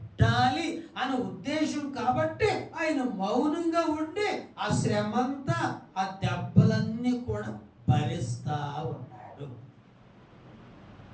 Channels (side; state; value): both; identical; correlation 1.00